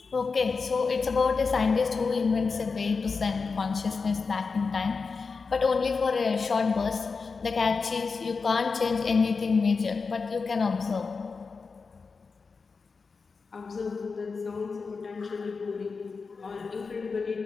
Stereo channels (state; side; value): quieter; right; 4.7 dB